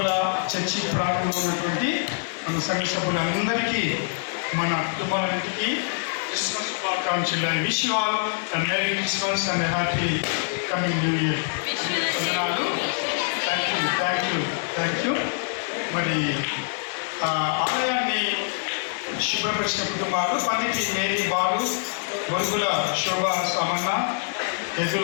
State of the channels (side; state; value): right; silent; digital silence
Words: చర్చి ప్రాంతంలో ఉన్నటువంటి మన సంఘ సభ్యులందరికీ మన కుటుంబాలన్నింటికి క్రిస్మస్ శుభాకాంక్షలు. I wish you all a merry Christmas and happy coming new year. Thank you. మరి ఆలయాన్ని శుభ్రపరిచిన కుటుంబాలు పండితి మేరీ బాలు, బొరుగుల శోభ సమన్న,